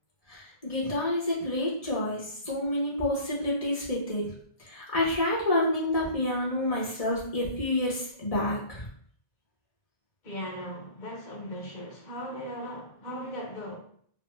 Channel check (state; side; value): late; right; 1.7 ms